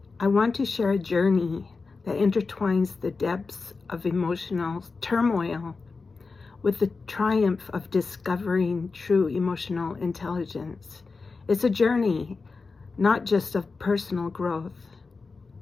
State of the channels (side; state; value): right; quieter; 4.3 dB